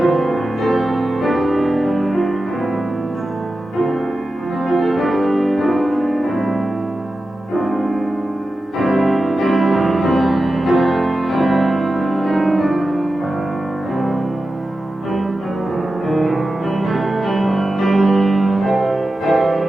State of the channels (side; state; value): both; normal; correlation 0.92